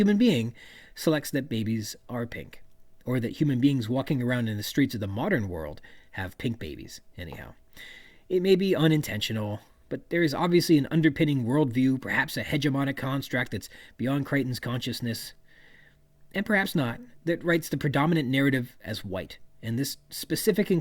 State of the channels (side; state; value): both; identical; correlation 1.00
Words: being, selects that babies are pink, or that human beings walking around in the streets of the modern world have pink babies, anyhow. It may be unintentional, but there is obviously an underpinning worldview, perhaps a hegemonic construct that's beyond Crichton's consciousness, and perhaps not, that writes the predominant narrative as white. And this specific